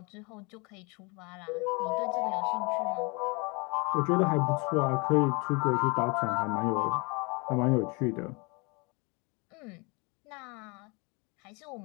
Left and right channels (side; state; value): right; quieter; 29.4 dB